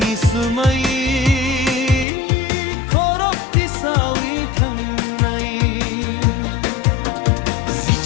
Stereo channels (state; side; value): drops out; right; at 2.1 s